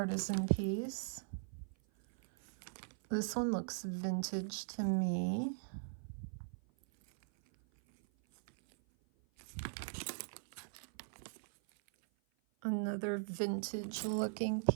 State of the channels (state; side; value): silent; left; 51 dB below the other